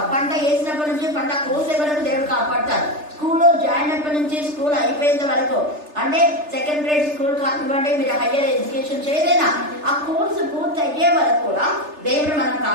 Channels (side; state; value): left; late; 3.3 ms